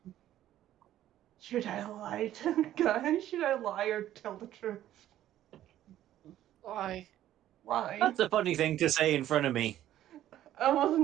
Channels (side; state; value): left; quieter; 12.7 dB